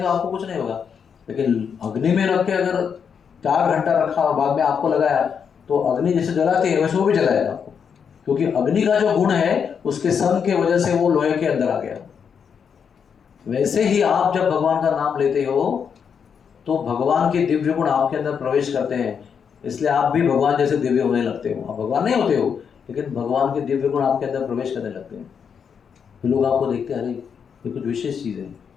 आपको कुछ नहीं होगा। लेकिन अग्नि में रख के अगर 4 घंटा रखा और बाद में आपको लगाया तो अग्नि जैसे जलाती है वैसे वो भी जलाएगा आपको, क्योंकि अग्नि का जो गुण है उसके सन के वजह से वो लोहे के अंदर आ गया। वैसे ही आप जब भगवान का नाम लेते हो तो भगवान के दिव्य गुण आपके अंदर प्रवेश करते हैं, इसलिए आप भी भगवान जैसे दिव्य होने लगते हो। आप भगवान नहीं होते हो, लेकिन भगवान के दिव्य गुण आपके अंदर प्रवेश करने लगते हैं। तो लोग आपको देखते हैं, अरे ये कुछ विशेष चीज़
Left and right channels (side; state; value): right; quieter; 6.9 dB